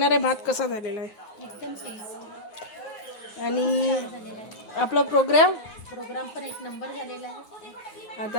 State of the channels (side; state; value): right; late; 9.5 ms